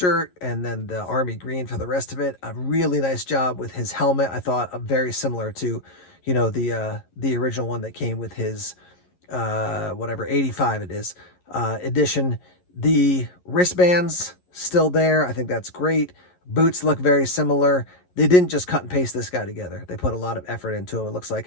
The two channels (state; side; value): late; right; 11 ms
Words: and then the army green for the rest of it. A really nice job with his helmet. I thought very similar to, the original one that came with his, 85 it is, edition. The wristbands still there. I think that's great. Boots look very similar. They didn't just cut and paste this guy together. They put a lot of effort into him, it looks